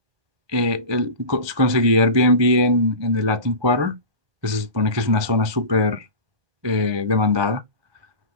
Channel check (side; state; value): left; late; 1.2 ms